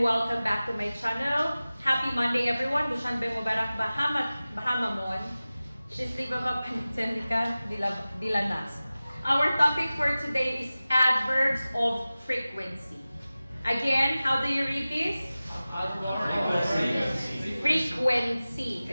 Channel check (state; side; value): inverted; both; correlation -0.97